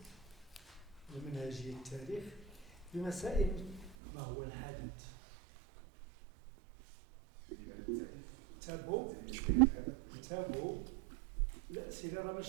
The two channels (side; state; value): left; drops out; at 4.0 s